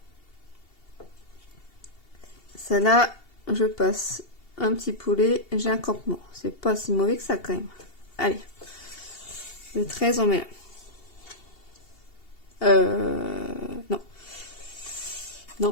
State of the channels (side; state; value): right; late; 2.7 ms